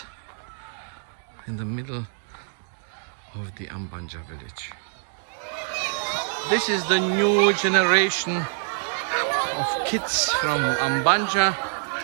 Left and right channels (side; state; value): left; silent; 61 dB below the other